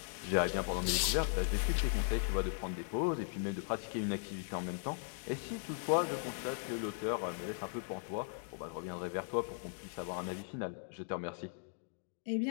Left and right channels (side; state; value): right; silent; digital silence